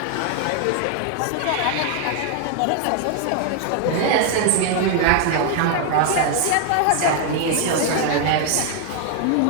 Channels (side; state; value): both; different; correlation 0.00